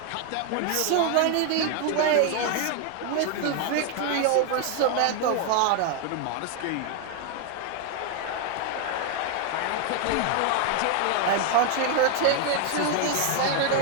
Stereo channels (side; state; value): both; different; correlation 0.01